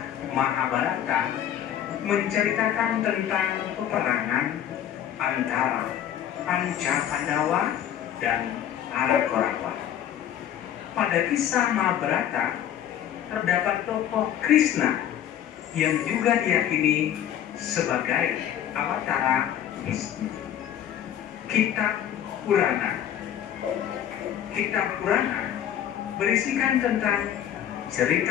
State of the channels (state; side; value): quieter; right; 10.4 dB